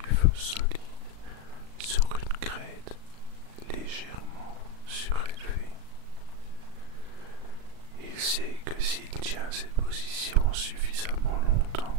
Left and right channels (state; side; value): late; left; 37 ms